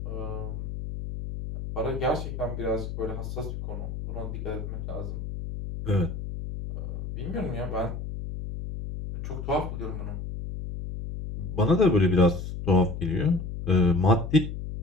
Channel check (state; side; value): noise; left; hum, 6 dB below the sound